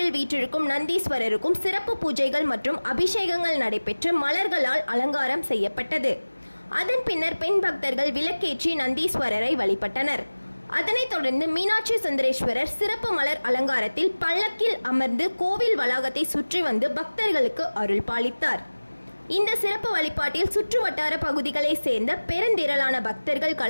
வீற்றிருக்கும் நந்தீஸ்வரருக்கும் சிறப்பு பூஜைகள் மற்றும் அபிஷேகங்கள் நடைபெற்று மலர்களால் அலங்காரம் செய்யப்பட்டது. அதன் பின்னர் பெண் பக்தர்கள் விளக்கேற்றி நந்தீஸ்வரரை வழிபட்டனர். அதனைத் தொடர்ந்து மீனாட்சி சுந்தரேஸ்வரர் சிறப்பு மலர் அலங்காரத்தில் பல்லக்கில் அமர்ந்து கோவில் வளாகத்தை சுற்றி வந்து பக்தர்களுக்கு அருள் பாலித்தார். இந்த சிறப்பு வழிபாட்டில் சுற்று வட்டார பகுதிகளை சேர்ந்த பெருந்திரளான பக்தர்கள்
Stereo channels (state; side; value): inverted; both; correlation -1.00